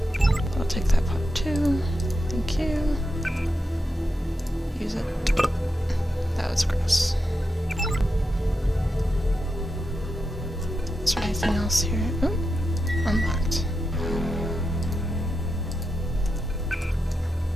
I'll take that pot too. Thank you. Use it. That was gross. Is there anything else here? Oh, unlocked.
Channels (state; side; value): normal; both; correlation 0.87